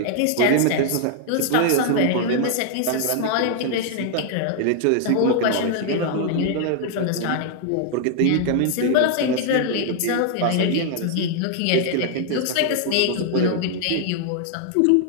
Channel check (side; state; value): both; different; correlation 0.00